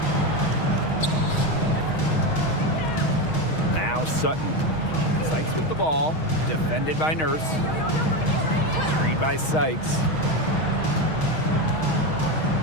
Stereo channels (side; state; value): right; late; 6.3 ms